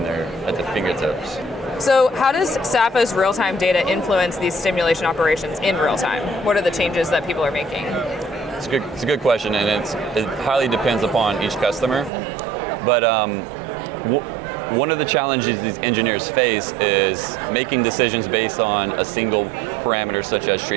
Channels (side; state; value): left; drops out; at 12.1 s